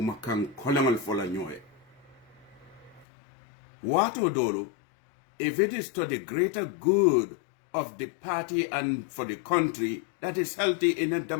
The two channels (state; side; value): drops out; right; at 3.1 s